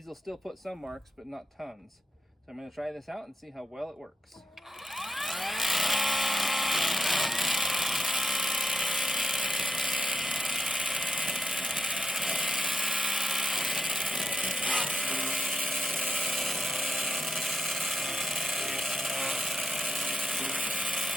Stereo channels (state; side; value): normal; both; correlation 0.81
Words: will still put some marks, but not tons. So I'm going to try this out and see how well it works.